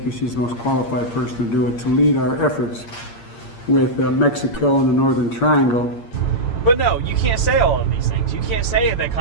she's the most qualified person to do it, to lead our efforts with Mexico and the Northern Triangle. But no, you can't say all of these things. You can't say that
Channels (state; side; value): late; right; 8.6 ms